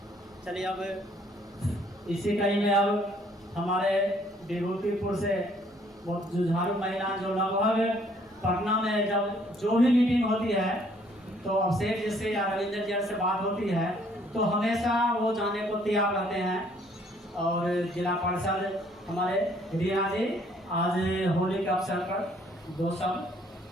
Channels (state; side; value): normal; both; correlation 0.63